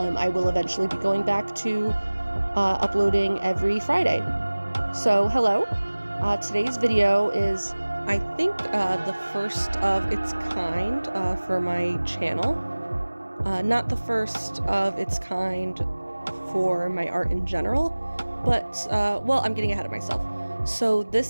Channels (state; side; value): inverted; both; correlation -1.00